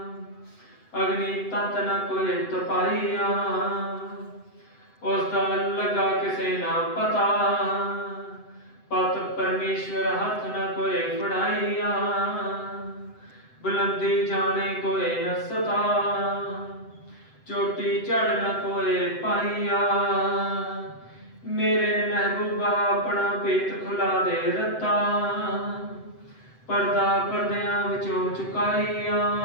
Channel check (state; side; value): late; right; 7.9 ms